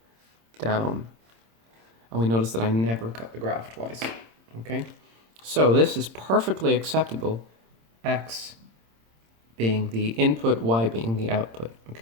down. And we notice that I never cut the graph twice, okay? So this is perfectly acceptable, x being the input, y being the output.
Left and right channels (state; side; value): late; left; 26 ms